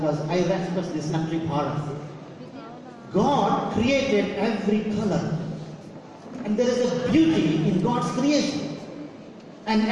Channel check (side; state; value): both; identical; correlation 1.00